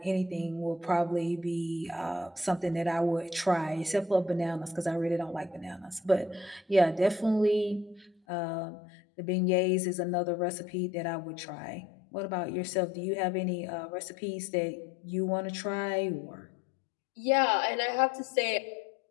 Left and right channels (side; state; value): right; drops out; at 8.1 s